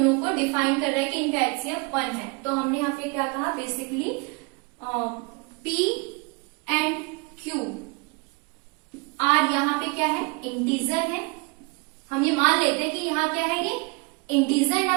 को डिफाइन कर रहा है कि इनका HCF 1 है। तो हमने यहाँ पे क्या कहा, basically P and Q are यहाँ पे क्या है, इंटीजर है। हम ये मान लेते हैं कि यहाँ क्या है, ये इंटीजर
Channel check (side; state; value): left; quieter; 29.6 dB